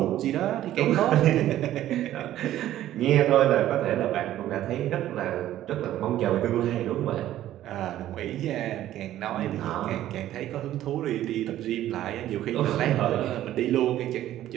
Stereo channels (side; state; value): left; quieter; 13.1 dB